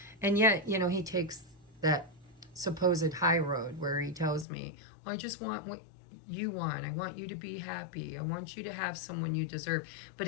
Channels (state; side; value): drops out; right; at 4.5 s